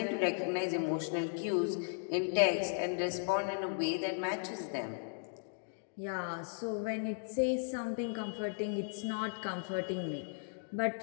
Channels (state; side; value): silent; right; digital silence